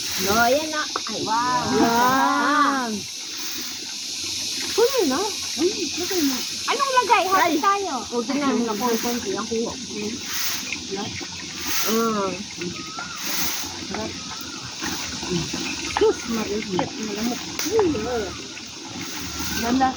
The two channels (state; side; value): identical; both; correlation 1.00